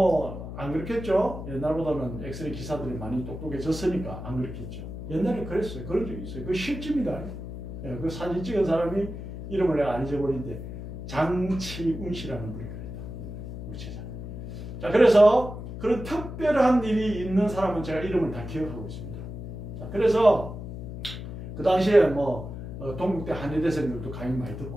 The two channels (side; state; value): left; noise; hum, 9 dB below the sound